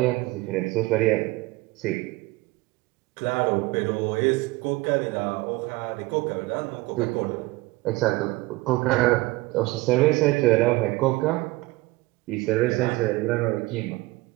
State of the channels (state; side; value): quieter; left; 21.3 dB